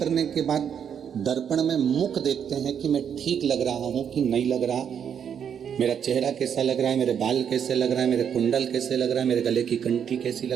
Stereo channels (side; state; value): left; quieter; 8.1 dB